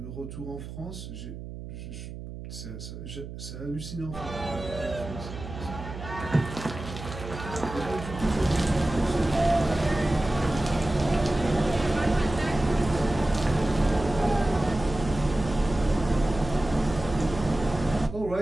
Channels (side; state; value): right; noise; hum, 10 dB below the sound